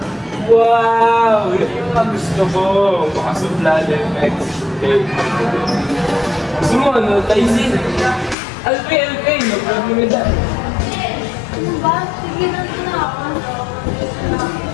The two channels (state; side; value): drops out; right; at 8.3 s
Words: Wow! Yan yung mga gusto ko. Makasupla effect. Okay. Gusto mo, ano? Tyson? Alpay! No problem with that. Ano ba? Sige na ako.